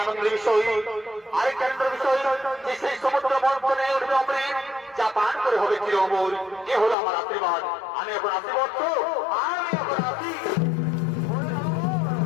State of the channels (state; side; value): drops out; right; at 7.0 s